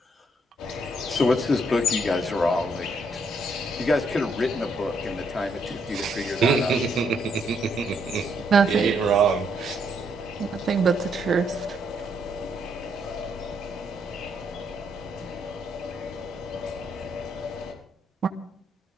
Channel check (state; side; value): normal; both; correlation 0.73